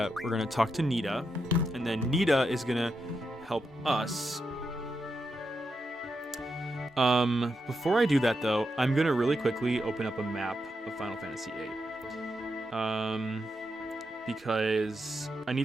we're going to talk to Nita, and then Nita is going to help us. Before I do that, though, I'm going to really quickly open up a map of Final Fantasy VIII. Because I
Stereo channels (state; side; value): normal; both; correlation 0.85